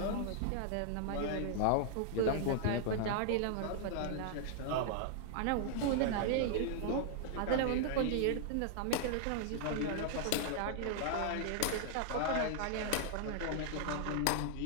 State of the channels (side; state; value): both; different; correlation -0.01